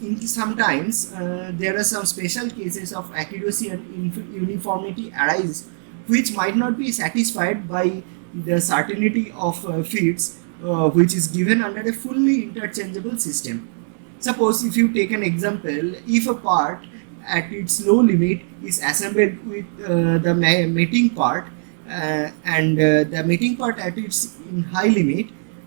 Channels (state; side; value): silent; left; digital silence